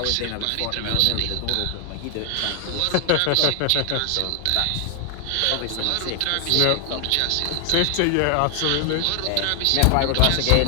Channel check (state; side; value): different; both; correlation 0.00